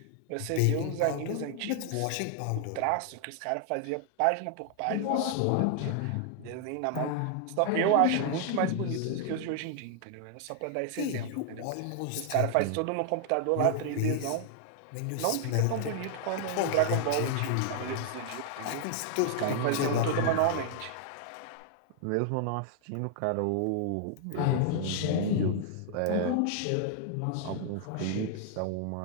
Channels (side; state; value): both; different; correlation -0.01